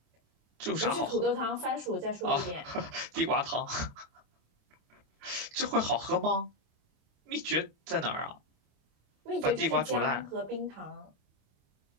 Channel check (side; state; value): left; late; 27 ms